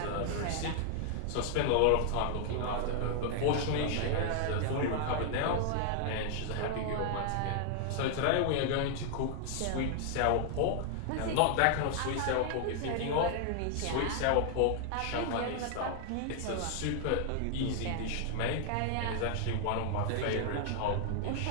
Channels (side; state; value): both; different; correlation 0.00